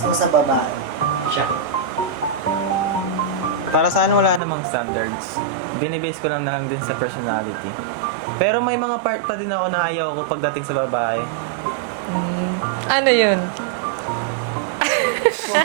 sa babae? Siya. Para sa akin, wala namang standards. Binibase ko lang na lang din sa personality. Pero may mga part pa din ako na ayaw ko pagdating sa babae. Ano yun? Kung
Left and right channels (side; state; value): left; drops out; at 4.4 s